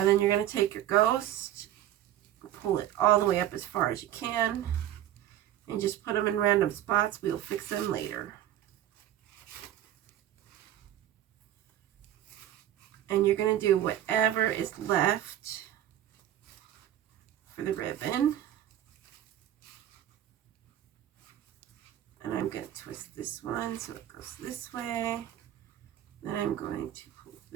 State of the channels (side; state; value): left; quieter; 12.0 dB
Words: then you're going to take your ghost, pull it all the way up as far as you can, and just put them in random spots. We'll fix them later. And you're going to do whatever is left for the ribbon. And I'm going to twist this one so it goes this way. Then I'm going to pull